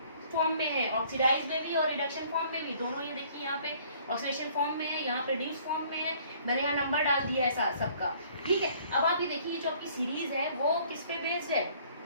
फॉर्म में है, ऑक्सीडाइज में भी और रिडक्शन फॉर्म में भी, दोनों ये देखिए यहाँ पे ऑक्सीडेशन फॉर्म में है, यहाँ पे रिड्यूस फॉर्म में है। मैंने यहाँ नंबर डाल दिया है सबका, ठीक है। अब आप ये देखिए जो आपकी सीरीज है वो किस पे बेस्ड है,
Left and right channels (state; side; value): inverted; both; correlation -0.58